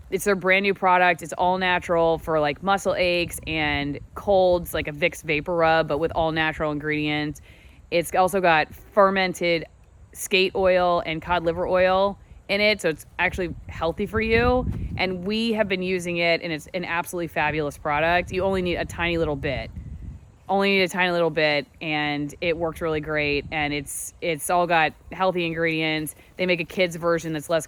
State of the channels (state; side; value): identical; both; correlation 1.00